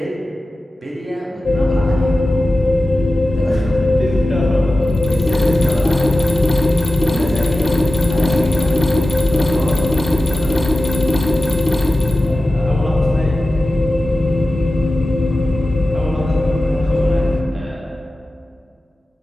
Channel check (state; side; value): normal; both; correlation 0.94